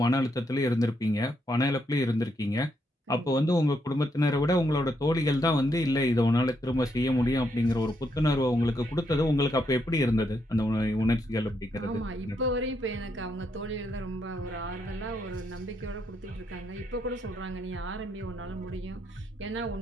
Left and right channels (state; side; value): normal; both; correlation 0.77